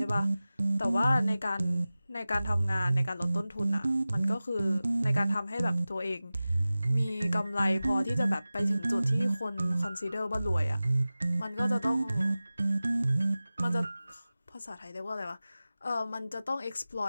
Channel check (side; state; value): both; inverted; correlation -0.96